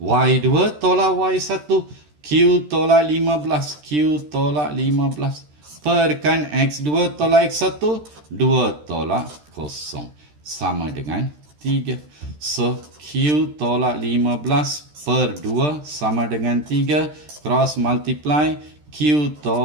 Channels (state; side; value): late; left; 13 ms